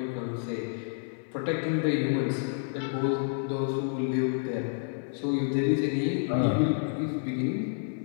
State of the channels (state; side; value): silent; right; 58 dB below the other